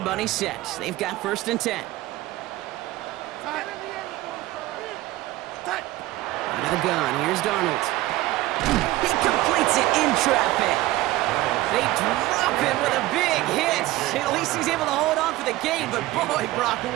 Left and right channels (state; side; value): quieter; left; 17.3 dB